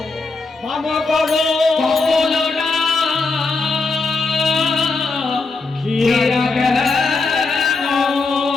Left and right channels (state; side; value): quieter; right; 3.9 dB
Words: বাবা করো বলো না খিরা গেল